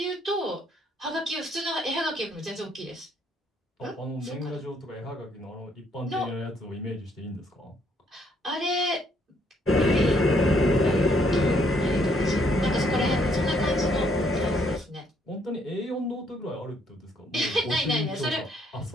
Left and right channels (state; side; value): normal; both; correlation 0.69